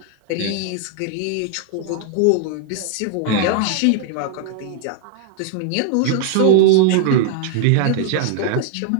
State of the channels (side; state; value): both; different; correlation 0.00